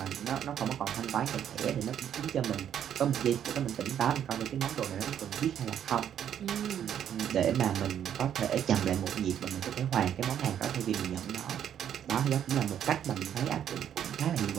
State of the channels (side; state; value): left; quieter; 9.6 dB